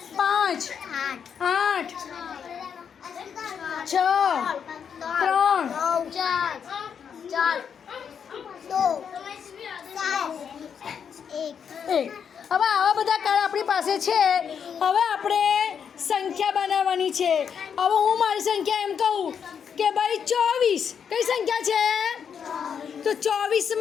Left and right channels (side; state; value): right; quieter; 7.3 dB